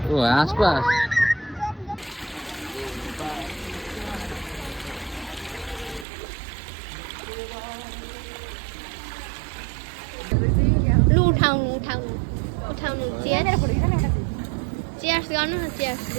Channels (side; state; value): left; drops out; at 6.1 s